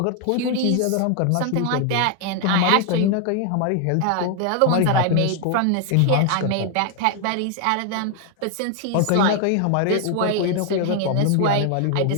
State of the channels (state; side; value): different; both; correlation 0.00